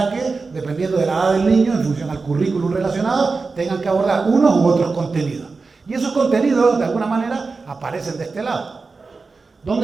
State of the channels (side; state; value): left; quieter; 4.2 dB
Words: que, dependiendo de la edad del niño, en función al currículum relacionado, tengan que abordar unos u otros contenidos. Y esos contenidos, de alguna manera, aparecen de este lado.